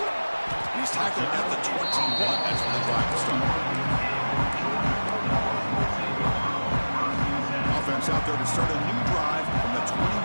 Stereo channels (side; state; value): both; inverted; correlation -1.00